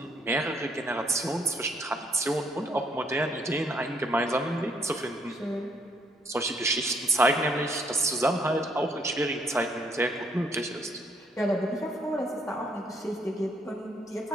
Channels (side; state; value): both; normal; correlation 0.68